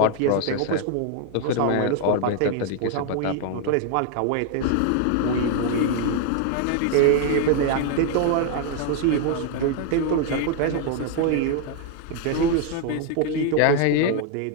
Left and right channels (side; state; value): both; different; correlation 0.00